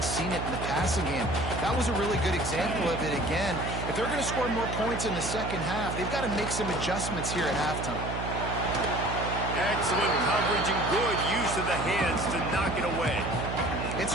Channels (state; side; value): noise; right; hum, 5 dB below the sound